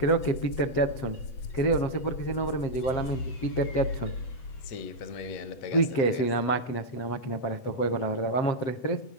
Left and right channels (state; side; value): late; right; 7.6 ms